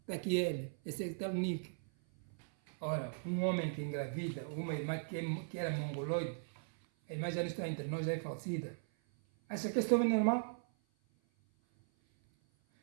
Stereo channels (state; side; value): silent; left; 52 dB below the other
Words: Está aqui ele, esse é o Nick. Ora, um homem que engravida, uma irmã que era mongoloide, a irmã já não está entre nós, já é falecida. Acha que esse homem é normal?